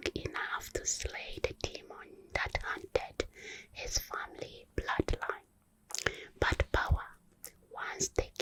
enough to slay the demon that haunted his family bloodline. But power, once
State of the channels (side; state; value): both; identical; correlation 1.00